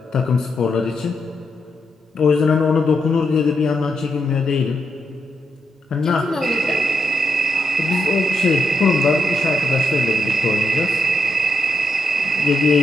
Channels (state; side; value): normal; both; correlation 0.81